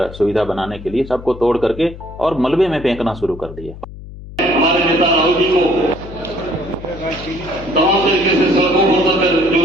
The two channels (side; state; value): left; noise; hum, 14 dB below the sound